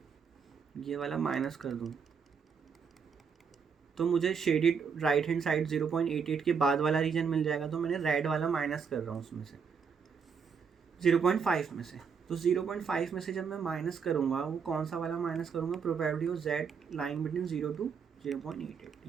वाला माइनस कर दूँ तो मुझे शेडेड राइट हैंड साइड 0.88 के बाद वाला रीजन मिल जाएगा। तो मैंने रेड वाला माइनस कर रहा हूँ उसमें से 0.5 में से। तो 0.5 में से जब मैं माइनस करूँगा, वो कौन सा वाला माइनस करूँगा, probability of z line between 0 to 0.88,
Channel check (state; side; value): quieter; left; 6.2 dB